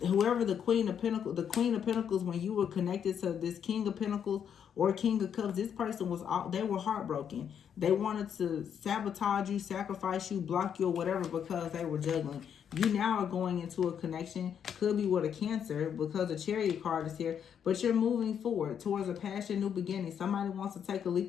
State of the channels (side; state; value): right; quieter; 8.3 dB